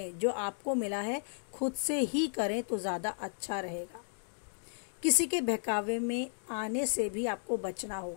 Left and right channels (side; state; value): right; silent; digital silence